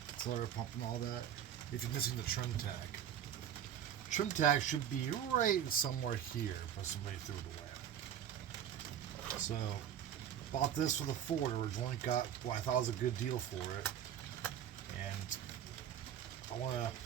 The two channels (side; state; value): left; quieter; 9.8 dB